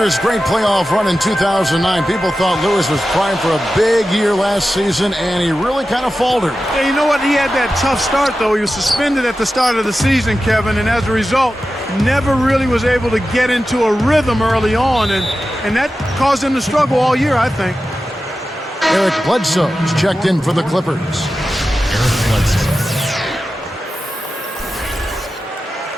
his great playoff run in 2009, people thought Lewis was primed for a big year last season, and he really kind of faltered. Yeah, you know what? He had that tough start, though. He was suspended at the start of the season, Kevin, and as a result, never really was able to get into a rhythm early on, and that caused him to struggle all year, I think. Eric Bledsoe is checked in for the Clippers. Eric Bledsoe.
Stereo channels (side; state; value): both; normal; correlation 0.93